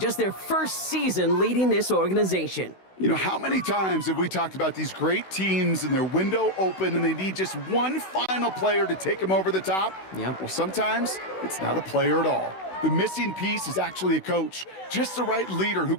their first season leading this organization. You know, how many times have we talked about these great teams and their window open and they need just one final player to take them over the top? Yep. Well, sometimes it's not a player at all. The missing piece is actually a coach, just the right leader who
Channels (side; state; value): right; late; 16 ms